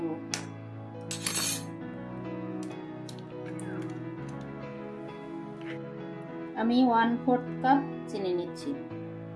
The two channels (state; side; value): identical; both; correlation 1.00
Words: আমি 1/4 কাপ চিনি নিচ্ছি।